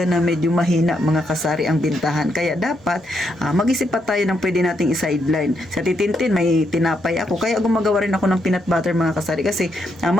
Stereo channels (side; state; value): both; normal; correlation 0.78